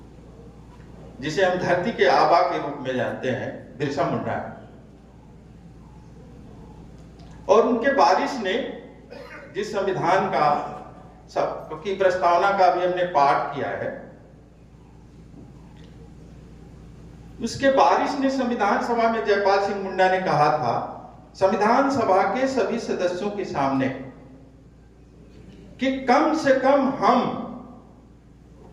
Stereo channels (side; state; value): both; identical; correlation 1.00